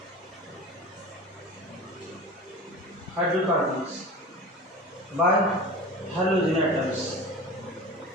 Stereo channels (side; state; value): both; normal; correlation 0.33